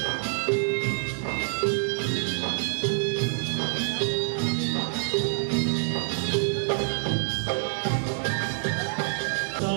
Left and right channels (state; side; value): silent; left; 60 dB below the other